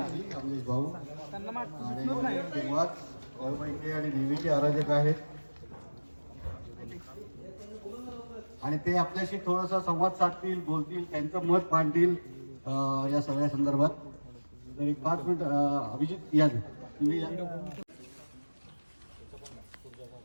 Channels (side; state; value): both; inverted; correlation -1.00